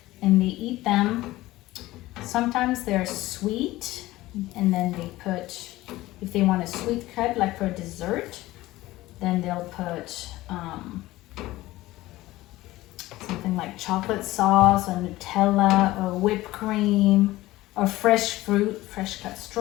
and they eat them. Sometimes they're sweet, and then they put, if they want a sweet crepe, like for dessert, then they'll put something like chocolate sauce or Nutella or whipped cream or fresh fruit, fresh cut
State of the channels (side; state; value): right; quieter; 17.5 dB